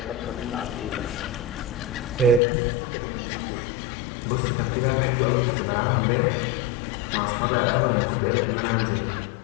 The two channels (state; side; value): drops out; right; at 2.4 s